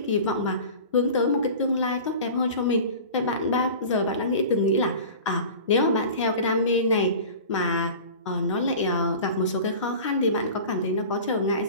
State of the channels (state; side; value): inverted; both; correlation -0.37